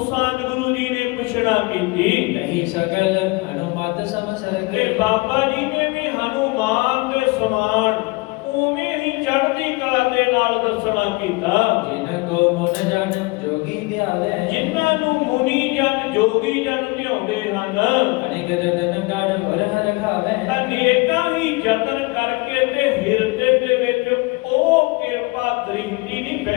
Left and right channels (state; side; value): quieter; right; 25.6 dB